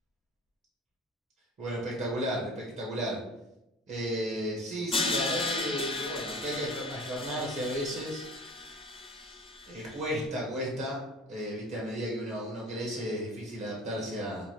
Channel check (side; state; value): both; normal; correlation 0.41